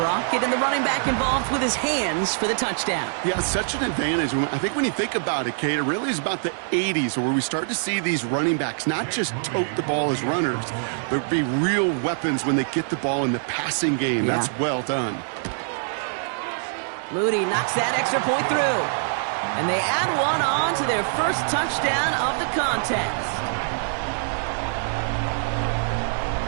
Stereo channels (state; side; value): silent; left; 62 dB below the other